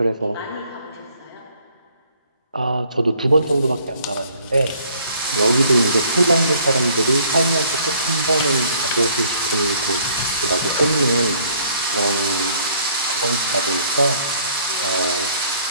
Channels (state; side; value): inverted; both; correlation -0.61